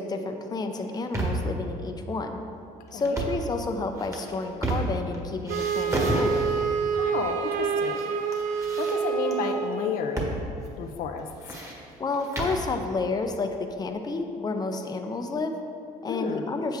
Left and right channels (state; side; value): normal; both; correlation 0.51